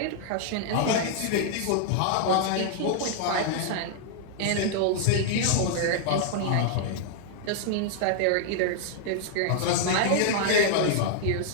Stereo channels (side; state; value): both; different; correlation -0.01